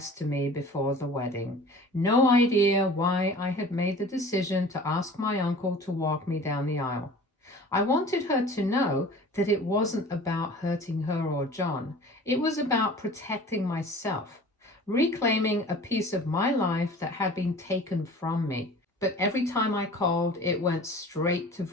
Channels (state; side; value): normal; both; correlation 0.43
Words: to me before the wedding. No idea why I had made the decision to ask my uncle to walk me down the aisle. I wanted her to know that it wasn't about hurting her or John. It was about protecting myself, reclaiming a piece of my life that had been taken from me. But every time I called, it went straight to